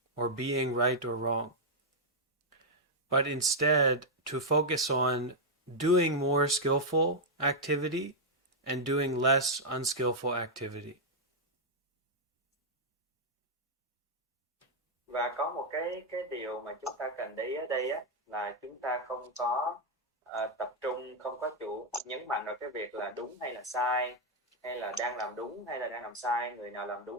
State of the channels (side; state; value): both; normal; correlation -0.03